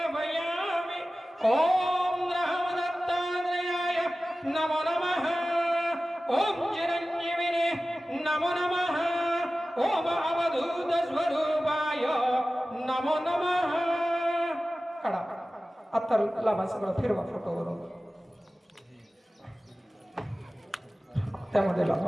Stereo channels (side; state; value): both; normal; correlation 0.96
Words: ओम रामदत्तात्रेयाय नमो नमः ओम चिरंजीविने नमो नमः ओम अवधूत स्वरूपाय नमो नमः काढा आता लावा सगळं फिरवा फोटोवरून त्यामध्ये